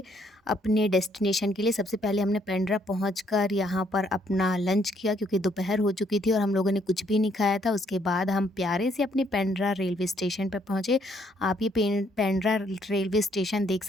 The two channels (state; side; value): normal; both; correlation 0.69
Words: अपने डेस्टिनेशन के लिए। सबसे पहले हमने पेंड्रा पहुंचकर यहाँ पर अपना लंच किया क्योंकि दोपहर हो चुकी थी और हम लोगों ने कुछ भी नहीं खाया था। उसके बाद हम प्यारे से अपने पेंड्रा रेलवे स्टेशन पर पहुँचे। आप ये पेंड्रा रेलवे स्टेशन देख